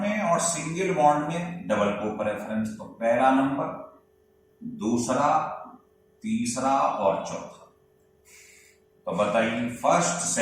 में और सिंगल बॉन्ड में डबल को प्रेफरेंस, तो पहला नंबर, दूसरा, तीसरा और चौथा। तो बताइए फर्स्ट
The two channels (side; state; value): both; identical; correlation 1.00